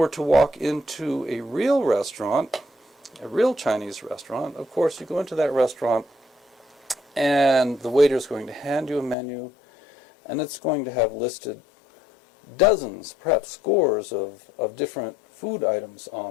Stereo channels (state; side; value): drops out; right; at 9.2 s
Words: to walk into a real restaurant, a real Chinese restaurant, of course you go into that restaurant and the waiter is going to hand you a menu and it's going to have listed dozens, perhaps scores of different food items